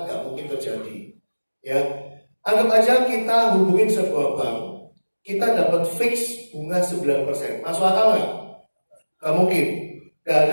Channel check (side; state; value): both; inverted; correlation -1.00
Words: gak mungkin terjadi. Ya, anggap aja kita hubungin sebuah bank, kita dapat fix bunga 9%. Masuk akal nggak? Gak mungkin. Gak